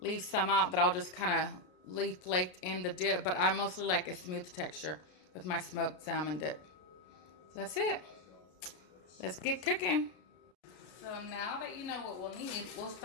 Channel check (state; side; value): late; right; 33 ms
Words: some out that I'll just kind of leave flaked in the dip, but I mostly like a smooth texture with my smoked salmon dip. So that's it. Let's get cooking. So now that you know what we'll need, we'll